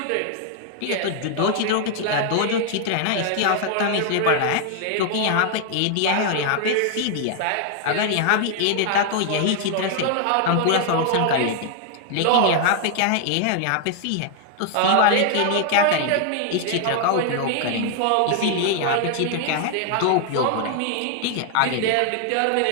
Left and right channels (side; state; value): both; different; correlation 0.00